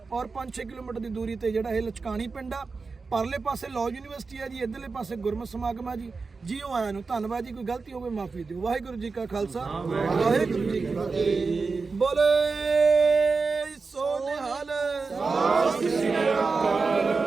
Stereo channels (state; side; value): quieter; left; 4.4 dB